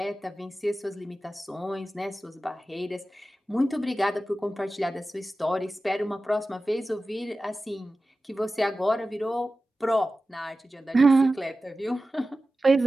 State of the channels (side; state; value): both; normal; correlation 0.95